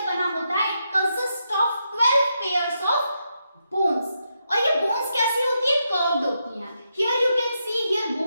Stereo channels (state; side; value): inverted; both; correlation -0.83